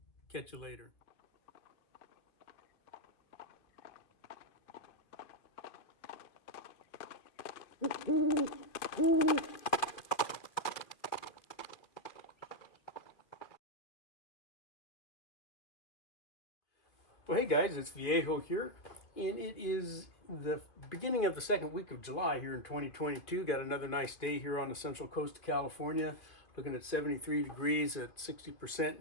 Catch you later. Well, hey guys, it's Viejo here, and it is the beginning of the second week of July here in 2022. Got another nice day here on the central coast of California, looking at 73 degrees at 60%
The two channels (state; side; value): late; right; 2.4 ms